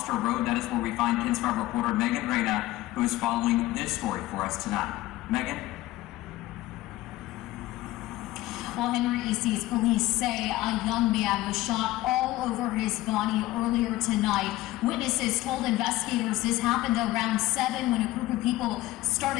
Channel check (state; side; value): quieter; right; 16.9 dB